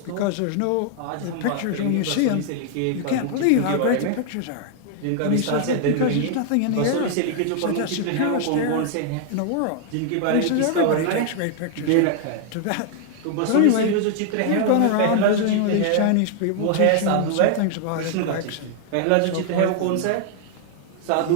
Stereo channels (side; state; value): both; different; correlation 0.00